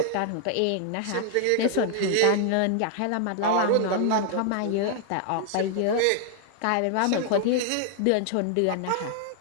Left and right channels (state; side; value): different; both; correlation -0.01